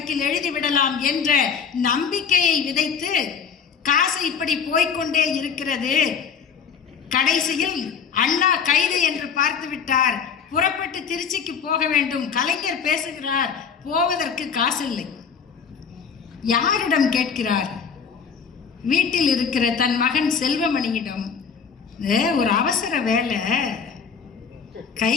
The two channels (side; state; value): right; quieter; 6.6 dB